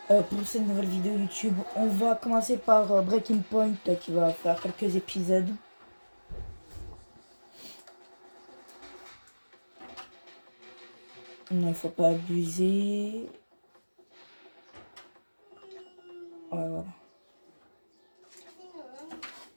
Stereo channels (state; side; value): inverted; both; correlation -1.00